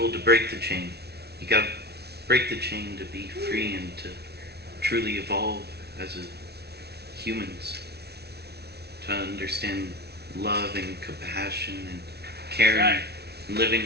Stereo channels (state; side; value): late; left; 0.48 ms